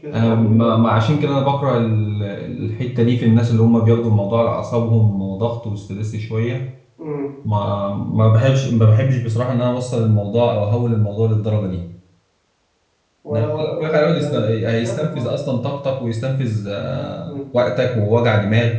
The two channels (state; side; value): identical; both; correlation 1.00